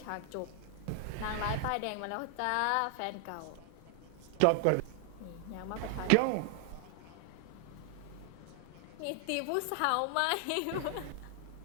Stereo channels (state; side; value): different; both; correlation 0.00